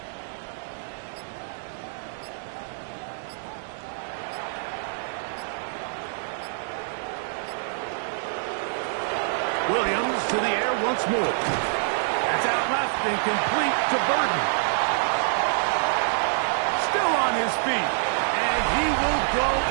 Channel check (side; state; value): left; silent; 61 dB below the other